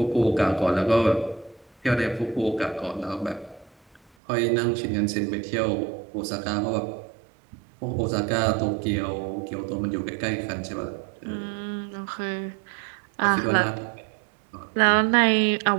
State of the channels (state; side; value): drops out; left; at 4.0 s